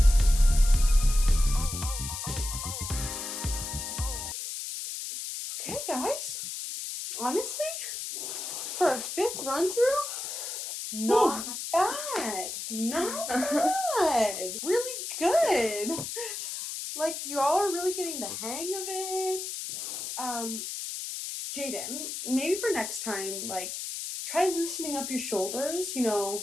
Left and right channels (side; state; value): left; noise; hiss, 6 dB below the sound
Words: Okay, guys. Honestly, for a 5th run through, not bad. Not bad. Really good. Like, you all are really getting the hang of it. Jaden, maybe for next time, try loosening up your shoulders,